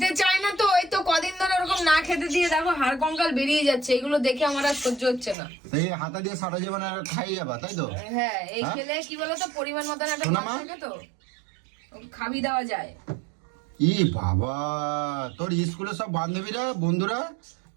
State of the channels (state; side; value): drops out; left; at 5.4 s